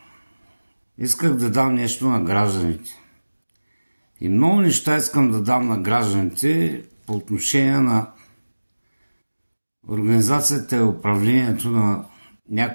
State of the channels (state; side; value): inverted; both; correlation -1.00